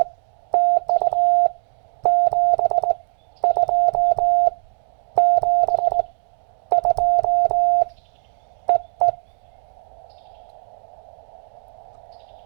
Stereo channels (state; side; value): silent; left; 58 dB below the other